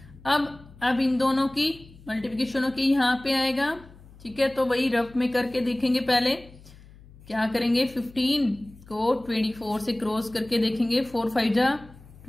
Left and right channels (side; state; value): left; noise; hum, 22 dB below the sound